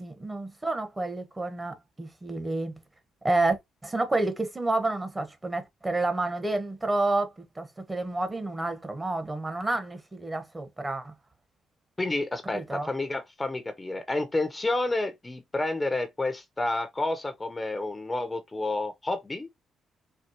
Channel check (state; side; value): normal; both; correlation 0.92